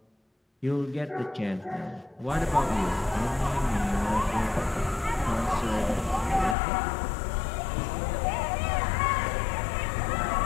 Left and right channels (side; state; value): right; drops out; at 6.6 s